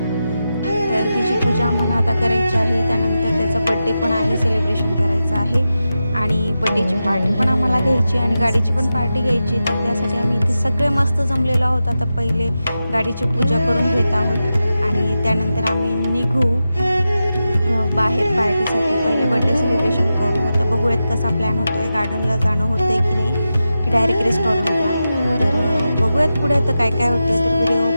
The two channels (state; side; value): inverted; both; correlation -0.91